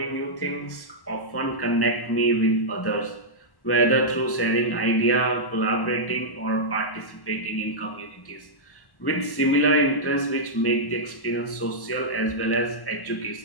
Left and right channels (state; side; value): late; right; 1.1 ms